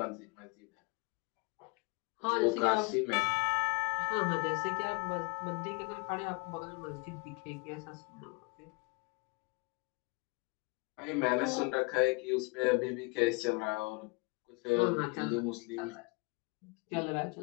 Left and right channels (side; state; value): right; quieter; 28.8 dB